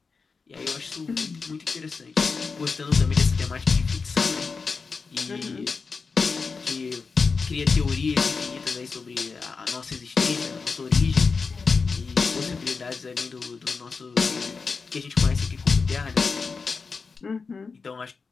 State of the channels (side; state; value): right; quieter; 4.8 dB